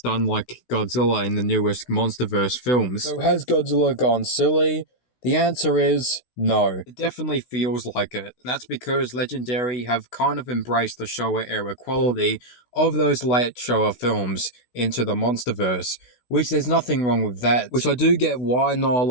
unlike Godzilla in the newest Monsterverse films. So has Godzilla gone silly? The answer is no. It definitely feels like it. That's because Legendary have kind of embraced the Showa era quality of those late Showa films into the Monsterverse, which there's nothing wrong with that. Which I do get why not a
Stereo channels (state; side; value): late; right; 16 ms